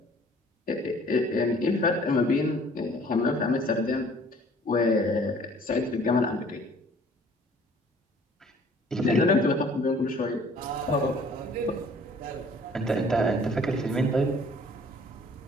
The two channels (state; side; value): normal; both; correlation 0.55